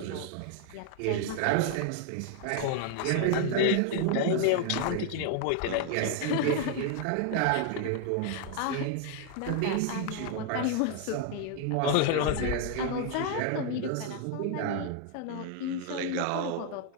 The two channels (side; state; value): both; different; correlation 0.00